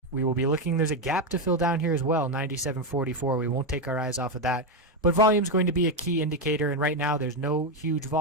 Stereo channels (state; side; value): normal; both; correlation 0.08